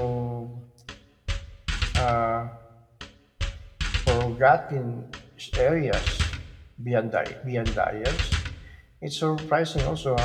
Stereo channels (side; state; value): both; identical; correlation 1.00